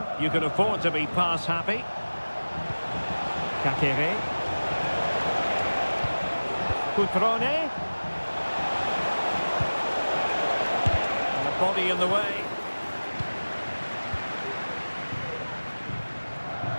you can afford to be pass happy. Kakere. Cutrone. And the body in the way.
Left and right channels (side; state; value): both; inverted; correlation -1.00